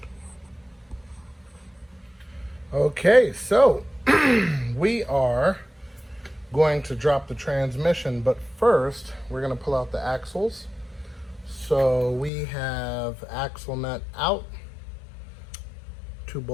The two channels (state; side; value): drops out; right; at 12.3 s